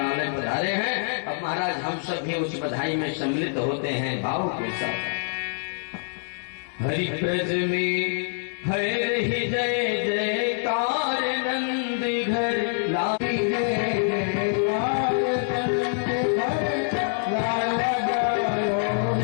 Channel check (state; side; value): silent; right; digital silence